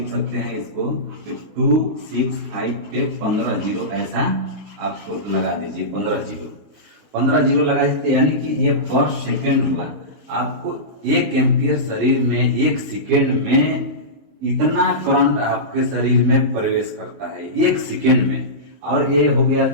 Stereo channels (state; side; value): late; left; 20 ms